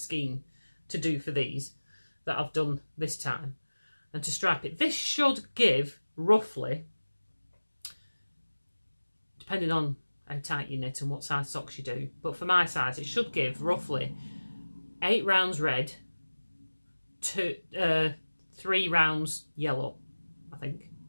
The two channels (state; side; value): inverted; both; correlation -1.00